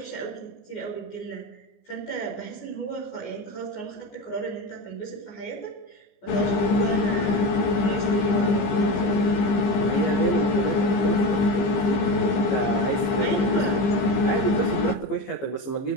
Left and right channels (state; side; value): late; right; 15 ms